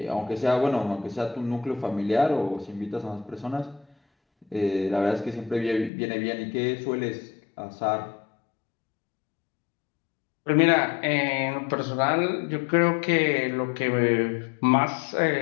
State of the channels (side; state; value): right; drops out; at 5.9 s